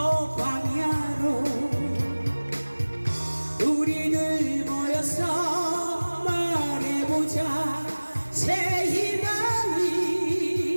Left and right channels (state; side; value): inverted; both; correlation -1.00